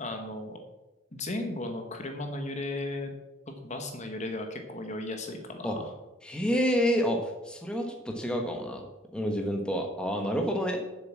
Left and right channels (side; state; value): both; normal; correlation 0.61